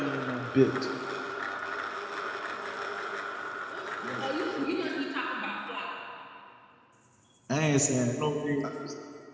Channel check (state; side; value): identical; both; correlation 1.00